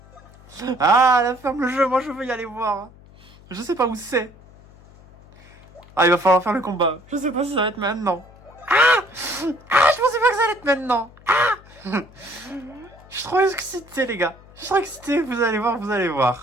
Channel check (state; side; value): noise; left; hum, 24 dB below the sound